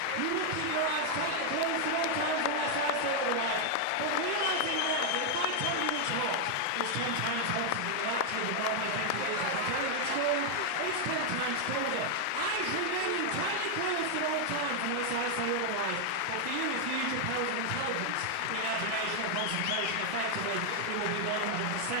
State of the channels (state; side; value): different; both; correlation 0.00